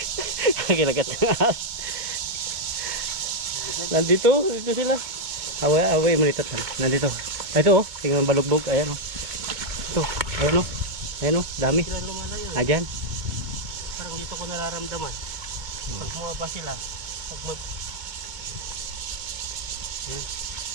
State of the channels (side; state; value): left; late; 2.2 ms